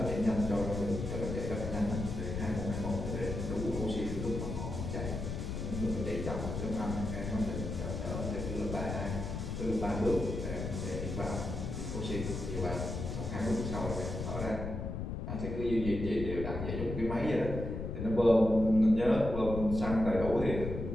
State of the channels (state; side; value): noise; left; rumble, 4 dB below the sound